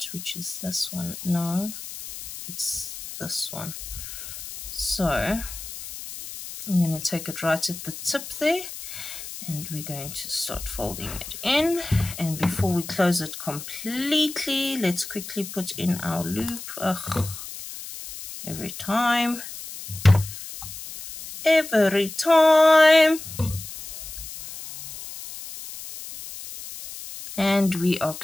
which is this one. No, it's this one. So I'm going to take it right at the tip there, and we're going to start folding it in. And before we close it completely, let's quickly put in our loop. Ugh, every time. And we are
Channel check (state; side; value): noise; left; hiss, 11 dB below the sound